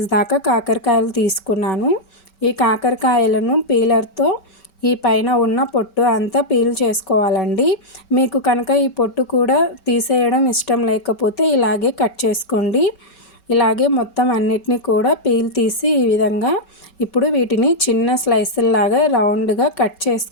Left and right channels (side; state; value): right; late; 5.3 ms